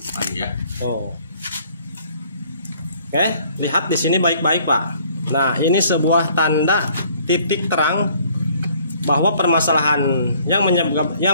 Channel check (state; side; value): inverted; both; correlation -0.59